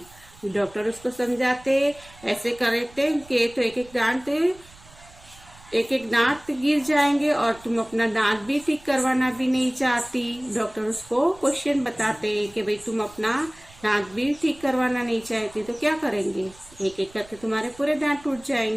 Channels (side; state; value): right; noise; rumble, 24 dB below the sound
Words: डॉक्टर उसको समझाते ऐसे करते कि तो एक एक दांत एक एक दांत गिर जाएंगे और तुम अपना दांत भी ठीक करवाना भी नहीं चाहती। डॉक्टर उसको क्वेश्चन बताते हैं कि भाई तुम अपना दांत भी ठीक करवाना नहीं चाहती तो क्या करेंगे, एक एक करके तुम्हारे पूरे दांत टूट